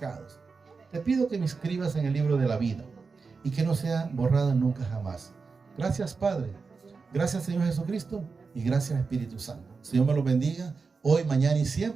Te pido que me inscribas en el libro de la vida y que no sea borrada nunca jamás. Gracias, Padre. Gracias, Señor Jesucristo, y gracias, Espíritu Santo. Señor me lo bendiga hoy, mañana y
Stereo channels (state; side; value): quieter; left; 4.7 dB